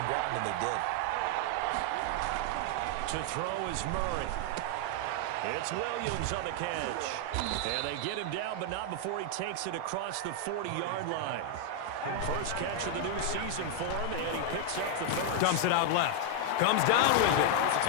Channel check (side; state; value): both; different; correlation 0.00